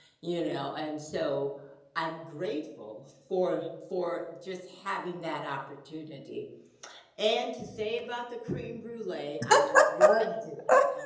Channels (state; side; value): identical; both; correlation 1.00